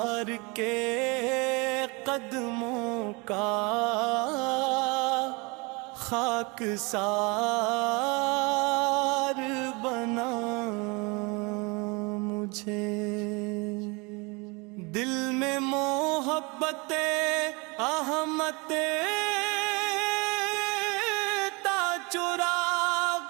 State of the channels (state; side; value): quieter; left; 28.3 dB